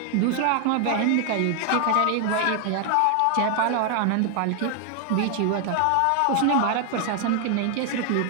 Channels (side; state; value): both; different; correlation 0.00